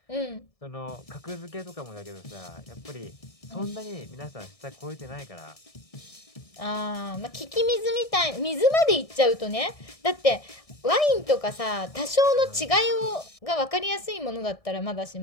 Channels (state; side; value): late; right; 1.6 ms